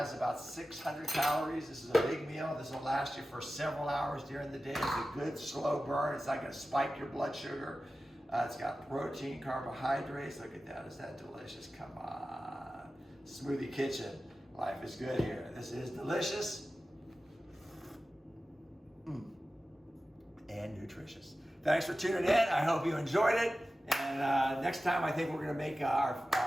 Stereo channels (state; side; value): normal; both; correlation 0.94